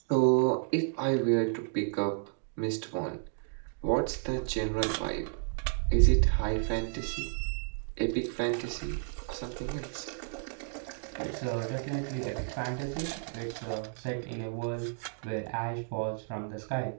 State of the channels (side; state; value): left; silent; digital silence